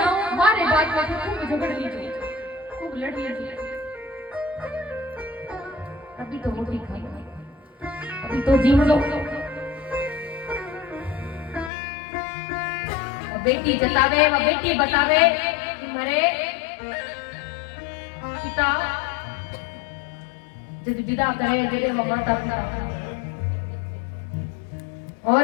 हमारे बात में खूब झगड़ लीजिए, खूब लड़ लीजिए, अभी तो रोटी खा लो, अभी तो जीव लो। बेटी जतावे व बेटी बतावे कि मेरे पिता जब विदा करे जरे वो माता पिता। और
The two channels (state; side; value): drops out; right; at 11.7 s